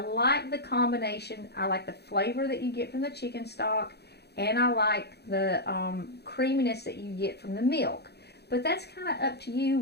the combination. I like the flavor that you get from the chicken stock, and I like the creaminess that you get from the milk. But that's kind of up to you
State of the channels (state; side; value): late; right; 0.48 ms